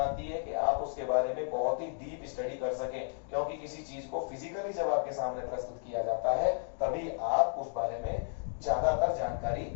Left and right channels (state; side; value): silent; right; digital silence